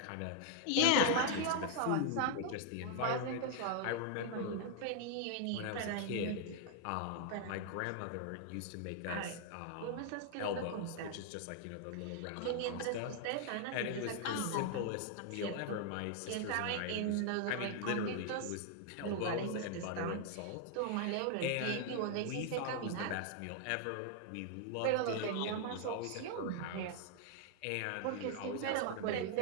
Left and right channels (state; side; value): different; both; correlation 0.00